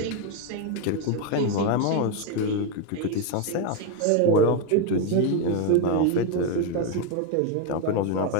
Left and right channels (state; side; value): different; both; correlation 0.02